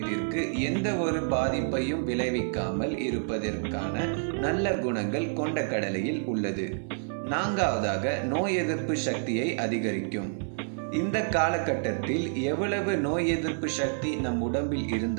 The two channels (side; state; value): left; silent; digital silence